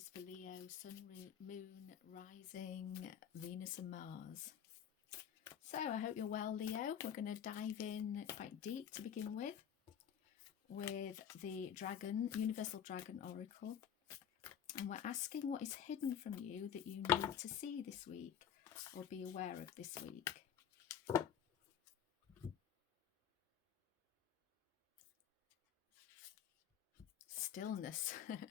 for Leo, Sun, Moon, Rising, Venus and Mars. So I hope you're well, Leo. We're going to dive in quite deep to begin with the Dragon, Universal Dragon Oracle. And we're asking what is hidden from you that you need to see this week or be aware of this week. Stillness.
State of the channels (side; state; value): right; quieter; 8.8 dB